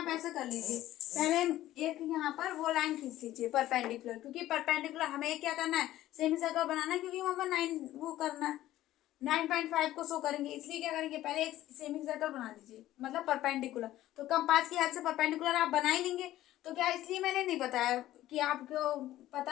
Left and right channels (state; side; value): quieter; right; 14.4 dB